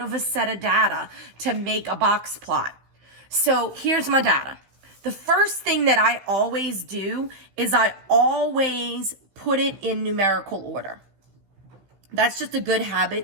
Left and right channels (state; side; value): late; left; 15 ms